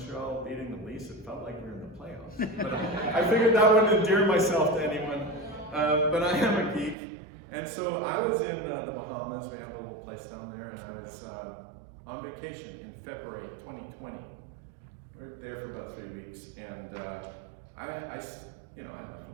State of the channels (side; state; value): left; drops out; at 7.0 s